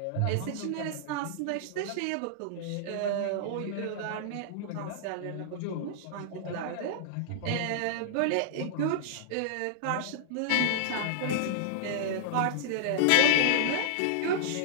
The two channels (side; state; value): both; different; correlation -0.02